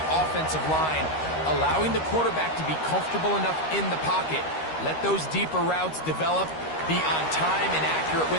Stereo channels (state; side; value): late; right; 13 ms